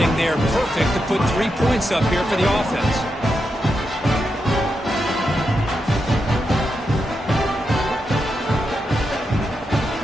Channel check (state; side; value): normal; both; correlation 0.86